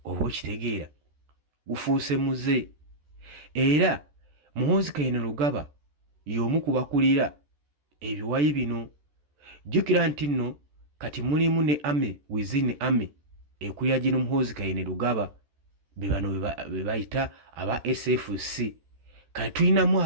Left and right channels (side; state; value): left; late; 14 ms